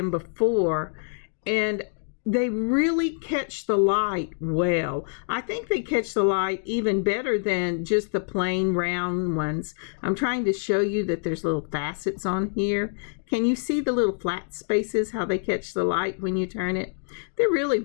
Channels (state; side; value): silent; right; digital silence